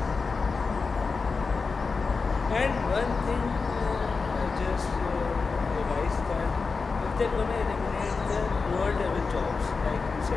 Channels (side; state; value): right; quieter; 4.5 dB